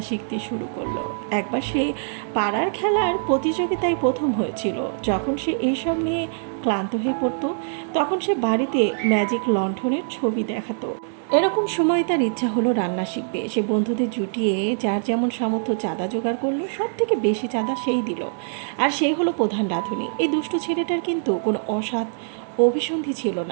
শিখতে শুরু করলো। একবার সে পাড়ার খেলার প্রতিযোগিতায় প্রথম হয়েছিল। যখন সে এইসব নিয়ে ক্লান্ত হয়ে পড়তো তখন সে বাড়িতে ম্যাজিক লণ্ঠনের ছবি দেখাতো। এরকম সময় তার ইচ্ছা হলো রান্না শিখবে। সে বন্ধুদের জুটিয়ে যার যেমন সামর্থ্য চাঁদা জোগাড় করলো, সব থেকে বেশি চাঁদা সেই দিল। আর সেই হলো প্রধান রাঁধুনি। এই দুষ্ট ছেলেটার কিন্তু কোনো অসৎ অভিসন্ধি ছিল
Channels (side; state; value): left; silent; digital silence